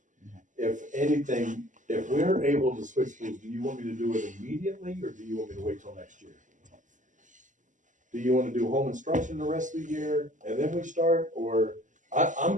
If anything, if we're able to switch schools, do you want me to do it immediately, or do you want me to wait till next year? Do you wanna do home instruction the rest of the year, and then we start, or,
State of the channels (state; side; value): late; left; 0.37 ms